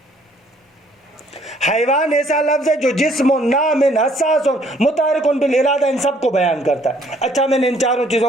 حیوان ایسا لفظ ہے جو جسم نام حساس متحرک بالارادہ ان سب کو بیان کرتا ہے. اچھا میں نے ان چاروں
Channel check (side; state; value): both; normal; correlation 0.62